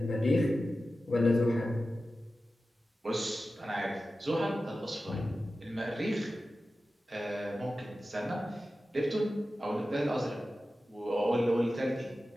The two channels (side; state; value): both; normal; correlation 0.94